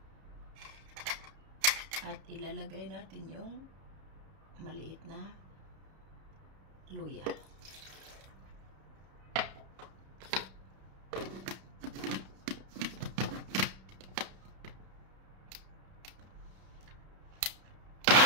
At ilalagay natin yung maliit na luya.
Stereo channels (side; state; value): left; late; 31 ms